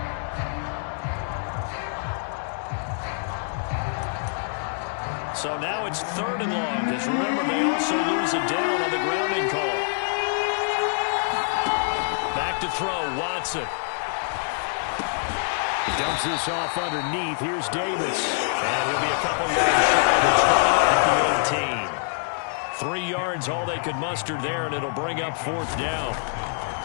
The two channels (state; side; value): silent; right; digital silence